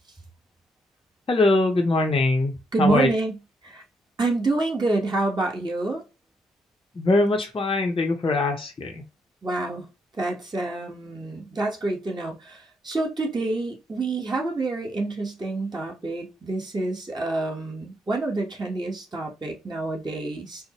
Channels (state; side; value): normal; both; correlation 0.77